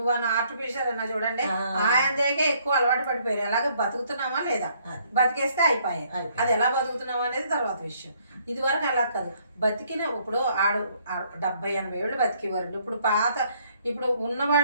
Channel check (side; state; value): both; inverted; correlation -0.66